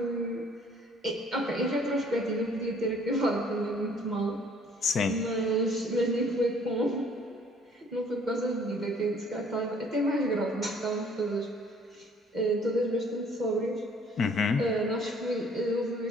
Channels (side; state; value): both; normal; correlation 0.58